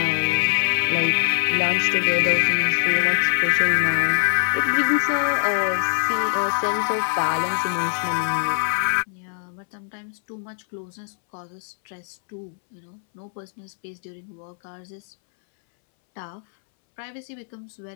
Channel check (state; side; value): silent; right; 63 dB below the other